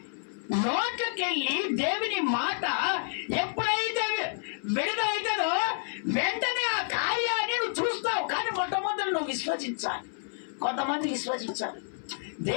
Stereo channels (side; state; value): right; silent; 58 dB below the other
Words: నోట్లకెళ్ళి దేవుని మాట ఎప్పుడైతే విడుదలైతుందో వెంటనే ఆ కార్యాన్ని నువ్వు చూస్తావు. కానీ మొట్టమొదటి నువ్వు విశ్వసించాలి. కొంతమంది విశ్వసించాలి,